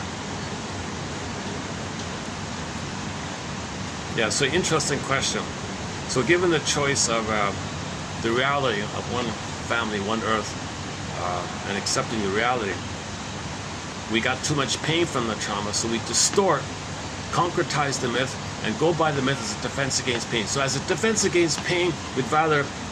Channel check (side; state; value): both; identical; correlation 1.00